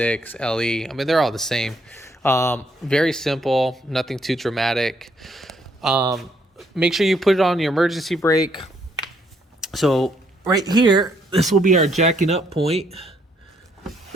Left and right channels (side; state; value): both; normal; correlation 0.70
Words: LE. I mean, they're all the same. Very simple, nothing too dramatic. Make sure you put it on your emergency brake. So right here, this will be our jacking up point.